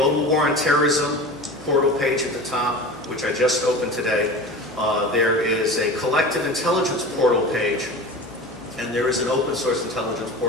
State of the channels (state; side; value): normal; both; correlation 0.33